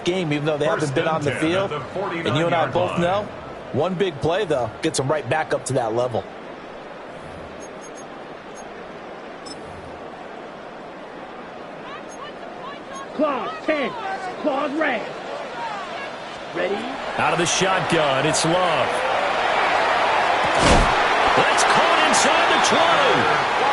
game, even though they haven't been on the field? And you and I both know, one big play, though, gets them right back up to that level. Claws 10. Claws red. Ready? Out of the shotgun, it's Love. That's caught inside the 20.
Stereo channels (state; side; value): identical; both; correlation 1.00